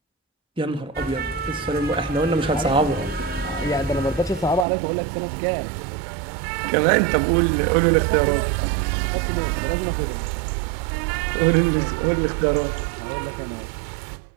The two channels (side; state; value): left; drops out; at 4.7 s